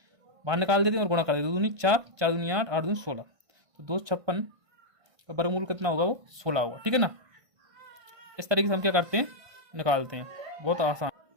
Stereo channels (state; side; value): late; left; 1.5 ms